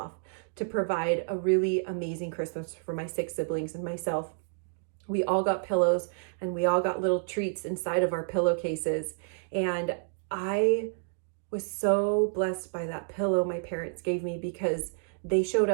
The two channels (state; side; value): silent; left; digital silence